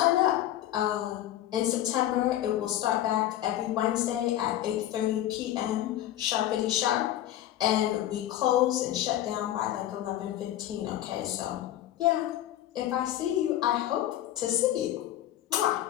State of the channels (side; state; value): right; quieter; 12.9 dB